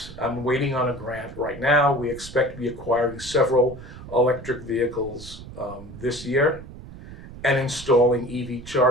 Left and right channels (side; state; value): right; noise; rumble, 15 dB below the sound